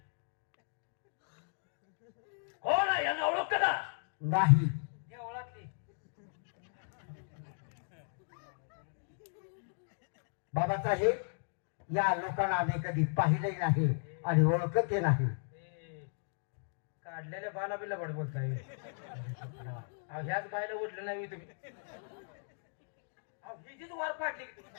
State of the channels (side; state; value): right; silent; digital silence